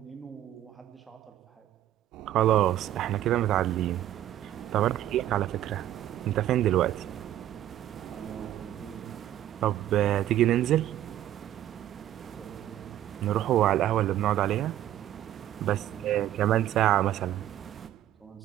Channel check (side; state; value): left; quieter; 12.6 dB